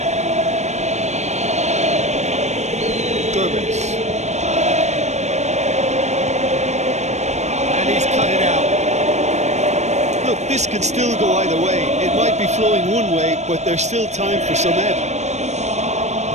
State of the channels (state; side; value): late; left; 0.33 ms